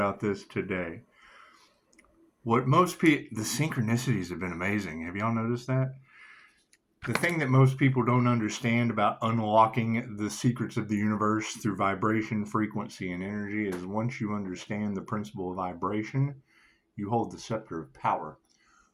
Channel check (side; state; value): both; identical; correlation 1.00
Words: this today. What most people, the synchronicities have been amazing. Have y'all noticed that? The thing that most people don't understand about unlocking the secrets of the universe through vibration, frequency, and energy is once you understand the principle of vibration, you hold the scepter of power.